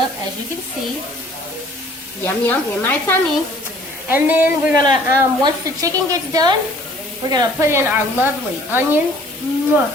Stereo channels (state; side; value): normal; both; correlation 0.55